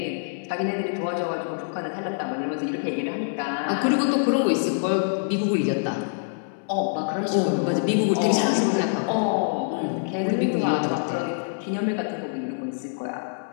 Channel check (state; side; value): silent; right; 62 dB below the other